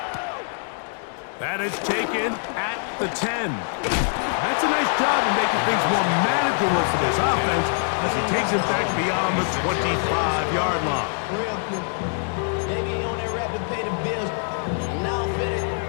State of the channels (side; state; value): right; silent; 58 dB below the other